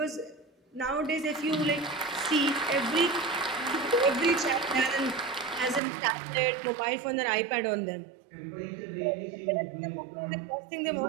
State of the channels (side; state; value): left; drops out; at 5.8 s